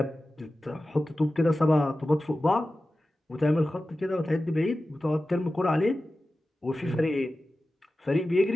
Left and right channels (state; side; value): normal; both; correlation 0.95